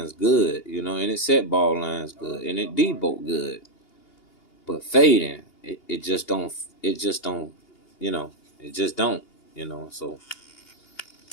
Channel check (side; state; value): right; late; 2.8 ms